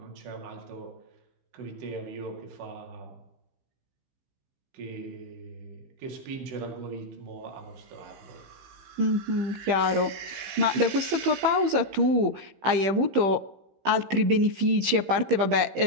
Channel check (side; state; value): left; late; 15 ms